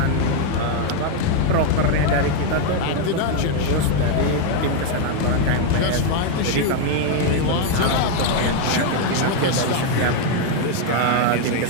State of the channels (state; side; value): different; both; correlation 0.01